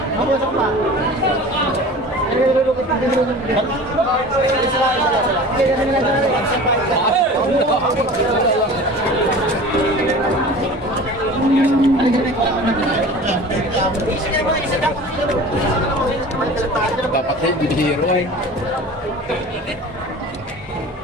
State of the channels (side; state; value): both; normal; correlation 0.39